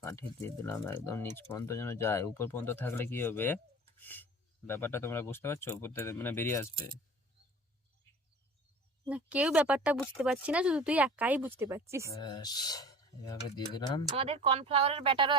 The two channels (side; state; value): both; normal; correlation 0.40